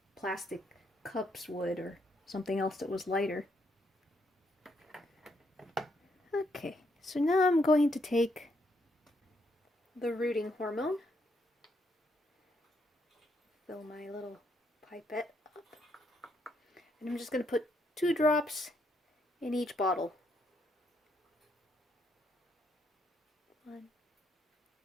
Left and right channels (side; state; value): both; normal; correlation 0.75